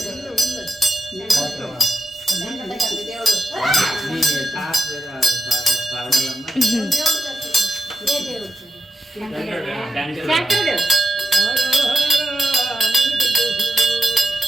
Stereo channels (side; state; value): both; normal; correlation 0.86